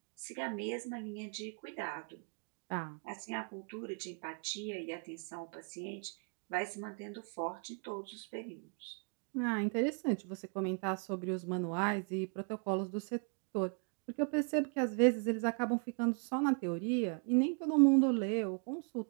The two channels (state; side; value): quieter; left; 40.0 dB